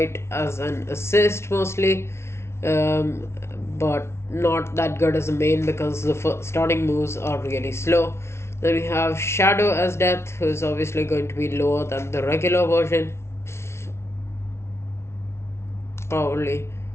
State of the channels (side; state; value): right; late; 0.13 ms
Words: as an assist mostly, but not that good as a main because the starting moves are really slow. Then we have Shadow as Death, who is obviously going to be lower than the regular version. Probably